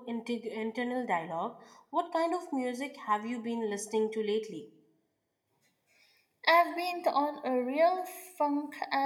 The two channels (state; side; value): identical; both; correlation 1.00